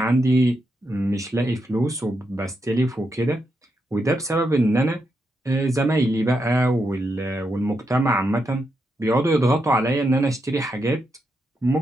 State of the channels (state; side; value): normal; both; correlation 0.83